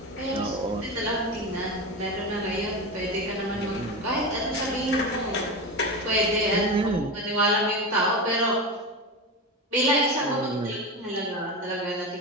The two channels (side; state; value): both; normal; correlation 0.22